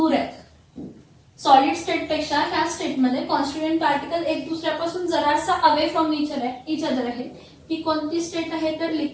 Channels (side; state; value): both; identical; correlation 1.00